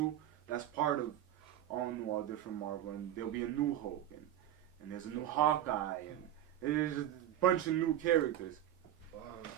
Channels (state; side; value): quieter; left; 11.9 dB